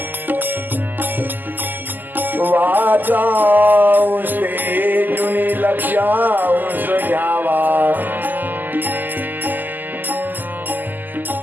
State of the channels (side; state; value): left; late; 0.087 ms